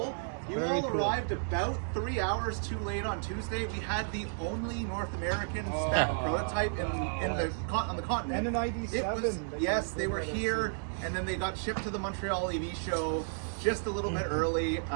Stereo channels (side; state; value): left; silent; digital silence